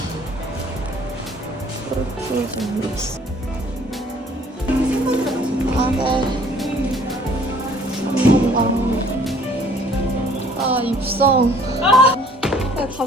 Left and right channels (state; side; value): normal; both; correlation 0.56